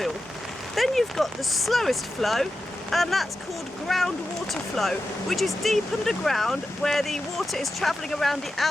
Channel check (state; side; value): normal; both; correlation 0.91